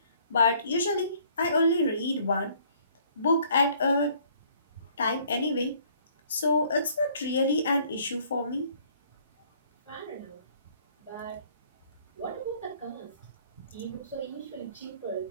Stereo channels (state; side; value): inverted; both; correlation -0.60